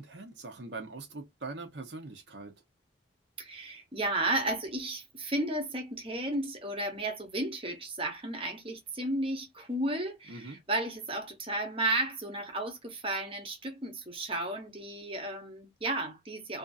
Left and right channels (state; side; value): normal; both; correlation 0.03